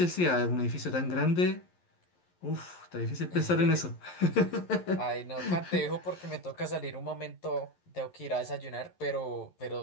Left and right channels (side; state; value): right; late; 11 ms